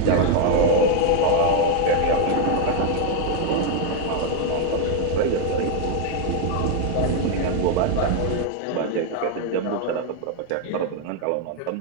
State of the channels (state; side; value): different; both; correlation 0.00